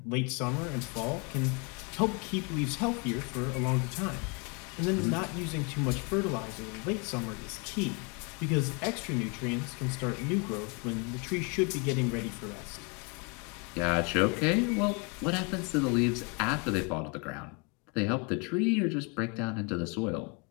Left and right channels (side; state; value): right; quieter; 32.8 dB